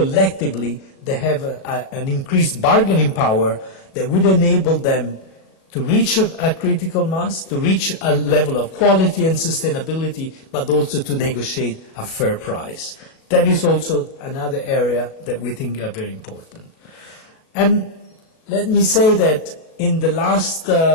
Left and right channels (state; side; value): late; right; 37 ms